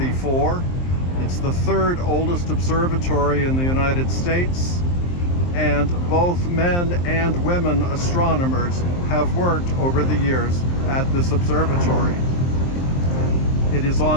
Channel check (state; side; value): late; right; 23 ms